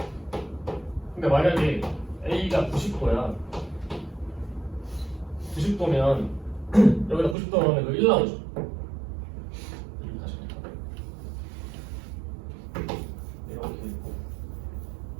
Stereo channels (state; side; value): drops out; left; at 7.4 s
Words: 근데 만약에 A가 90도야. 90도면 여기다 90도 넣으면 그 1 나오죠. 이렇게 다시 이렇게 있고